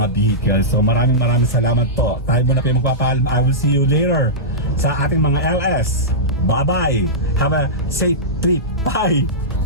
vehicles. So maraming salamat po. Tayo muna po yung magpapaalam. I will see you later sa ating mga LS. Bye-bye. Have a safe trip. Bye.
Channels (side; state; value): both; normal; correlation -0.14